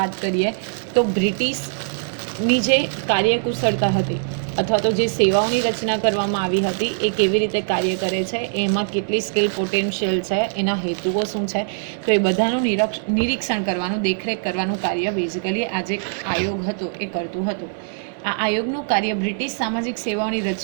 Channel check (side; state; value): left; silent; digital silence